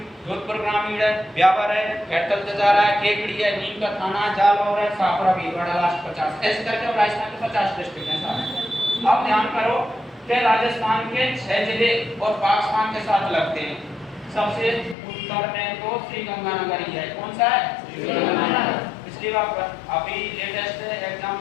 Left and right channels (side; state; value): right; drops out; at 15.0 s